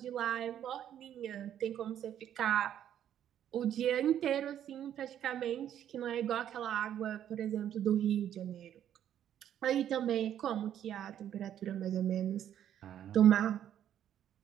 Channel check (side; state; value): left; quieter; 10.4 dB